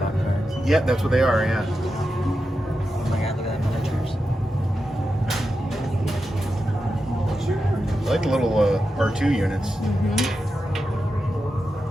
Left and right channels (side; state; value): both; normal; correlation 0.89